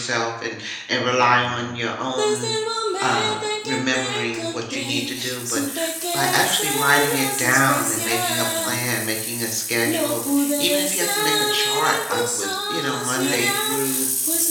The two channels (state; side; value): identical; both; correlation 1.00